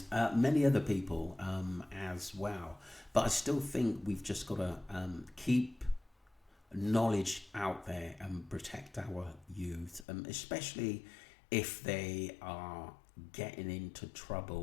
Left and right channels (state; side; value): drops out; right; at 10.1 s